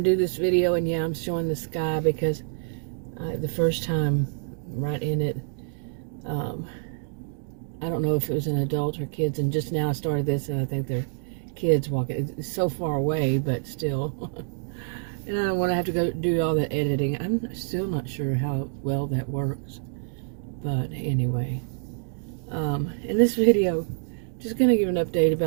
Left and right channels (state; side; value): silent; left; digital silence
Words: to do this video, and yeah, I'm showing the sky because the first time right in it, I don't know if it was an adult or kids, and just now I started this, and I think they're kids walking. It's so far away, but still. And I don't want to have to go do all the editing. I'm still not sure how well that works. But anyway, in this video, just going to give an update